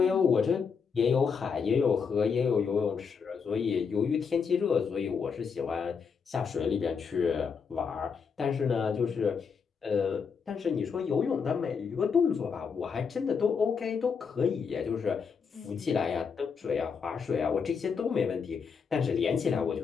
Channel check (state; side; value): quieter; right; 6.0 dB